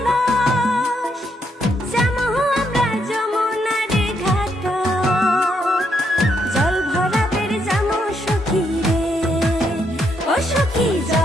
যামু আমরা যমুনার ঘাট, জল ভরাবের যামু সখী রে, ও সখী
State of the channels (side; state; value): both; normal; correlation 0.76